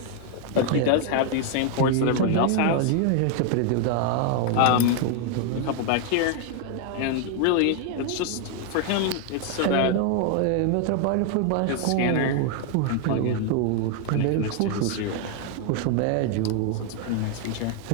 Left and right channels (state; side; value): different; both; correlation 0.00